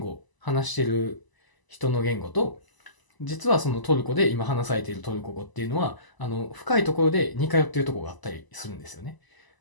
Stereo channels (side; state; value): right; late; 1.0 ms